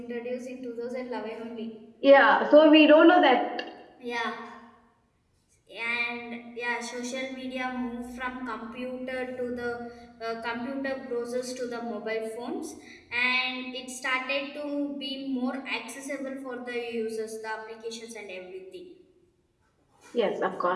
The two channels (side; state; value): both; identical; correlation 1.00